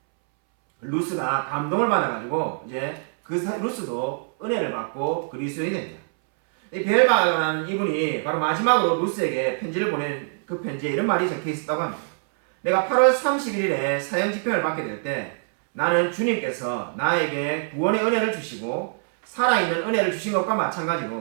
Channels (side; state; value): left; silent; 62 dB below the other